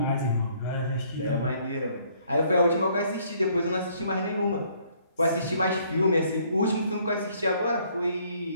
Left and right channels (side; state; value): both; inverted; correlation -0.64